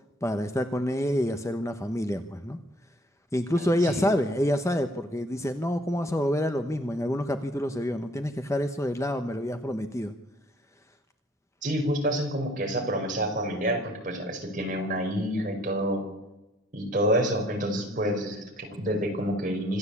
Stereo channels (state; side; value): normal; both; correlation 0.60